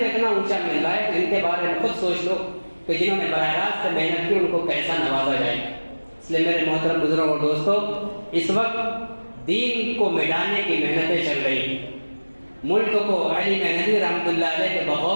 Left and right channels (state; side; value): inverted; both; correlation -1.00